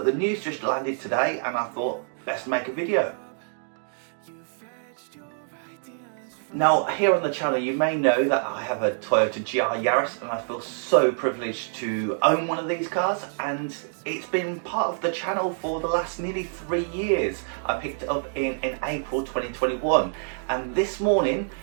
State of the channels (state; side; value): silent; left; digital silence